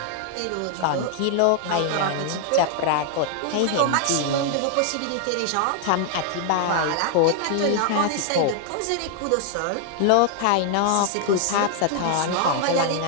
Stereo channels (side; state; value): both; different; correlation 0.00